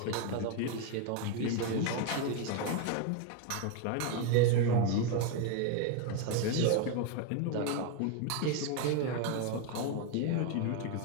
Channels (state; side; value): different; both; correlation 0.02